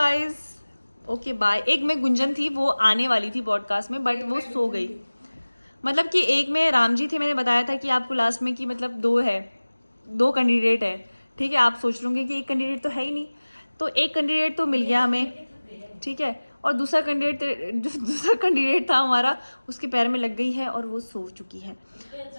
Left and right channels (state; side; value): inverted; both; correlation -1.00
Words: ओके बाय। एक में गुंजन थी, वो आने वाली थी पॉडकास्ट में, बट वो सो गई। मतलब कि एक में राम जी थे, मैंने बताया था कि आपको लास्ट में कि मतलब 2 कैंडिडेट है, ठीक है। आप सोच रहे कि एक कैंडिडेट तो है ही नहीं, तो एक कैंडिडेट तो मिल गया हमें, ठीक है। और दूसरा कैंडिडेट था हमारा, उसके पैर में लग गई है और वो सो चुकी है।